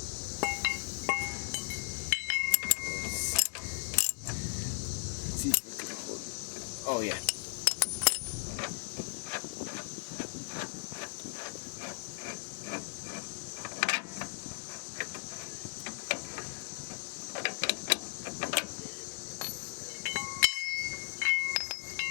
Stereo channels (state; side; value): silent; right; digital silence